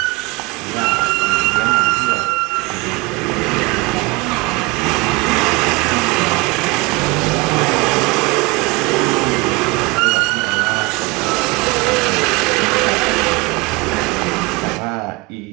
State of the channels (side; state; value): left; quieter; 24.6 dB